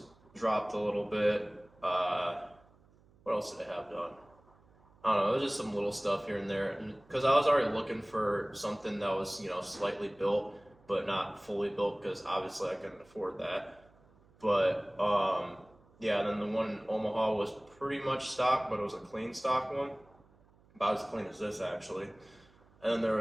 dropped a little bit. What else did it have done? I don't know. It was just some little stuff here and there, because I was already looking for something that was, you know, slightly built but not fully built, because obviously I couldn't afford that. But yeah, then the one in Omaha was pretty much stock, but it was a clean stock one, about as clean as this actually. And then there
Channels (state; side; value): noise; right; hum, 29 dB below the sound